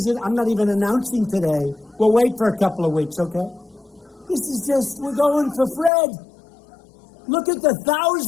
I'm not even announcing today. We'll wait for a couple of weeks, okay? This is just, we're going for Fred. Look at the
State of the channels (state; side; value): drops out; right; at 5.9 s